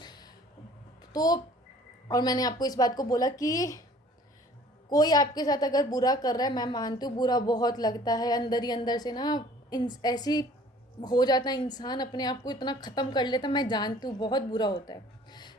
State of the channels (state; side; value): normal; both; correlation 0.52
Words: तो, और मैंने आपको इस बात को बोला कि कोई आपके साथ अगर बुरा कर रहा है, मैं मानती हूँ बुरा बहुत लगता है अंदर ही अंदर से ना, ऐसी हो जाता है इंसान अपने आप को इतना ख़त्म कर लेता, मैं जानती हूँ बहुत बुरा होता है